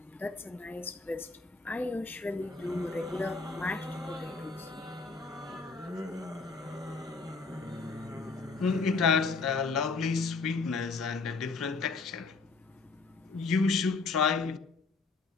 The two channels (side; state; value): right; quieter; 4.2 dB